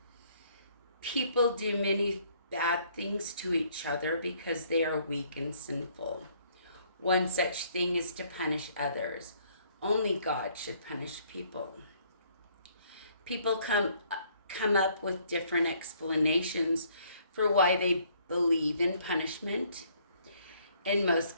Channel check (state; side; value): inverted; both; correlation -0.64